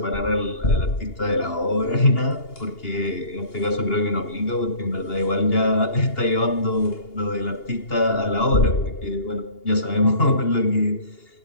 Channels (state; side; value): late; right; 2.8 ms